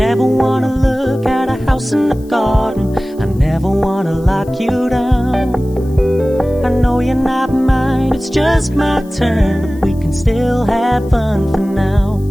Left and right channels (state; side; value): noise; left; hiss, 27 dB below the sound